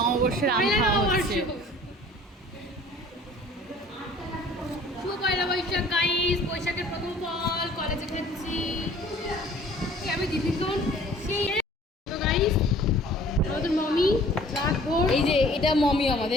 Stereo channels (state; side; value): normal; both; correlation 0.51